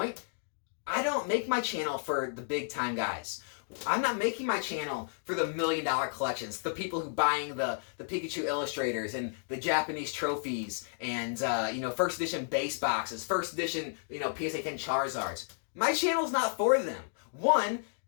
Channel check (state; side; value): silent; right; digital silence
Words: I don't make my channel for the big time guys. I'm not making my channel for the $1 million collections, the people who buying the Pikachu illustrators and the Japanese trophies and first edition base boxes, first edition PSA 10 Charizards. My channel's not for them. One,